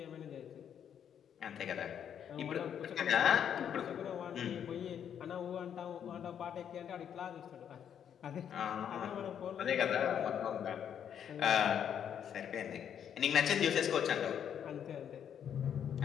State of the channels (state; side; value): quieter; right; 8.8 dB